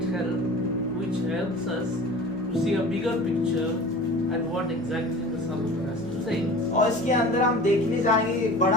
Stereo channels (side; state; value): right; noise; hum, 20 dB below the sound